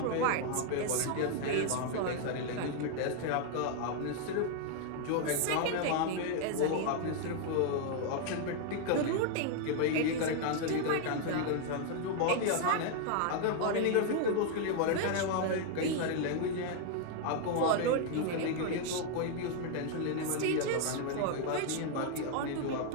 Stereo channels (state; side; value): different; both; correlation 0.00